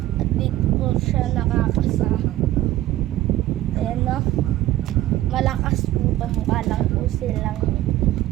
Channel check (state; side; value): quieter; left; 14.9 dB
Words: At dito po siya nakakasa. Ayan no. Malakas po to. Mukha lang po silang